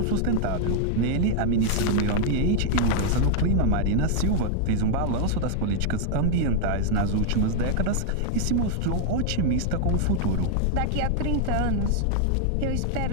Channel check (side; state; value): both; different; correlation 0.00